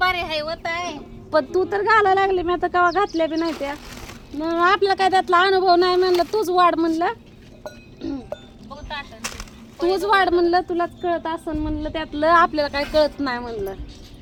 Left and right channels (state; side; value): identical; both; correlation 1.00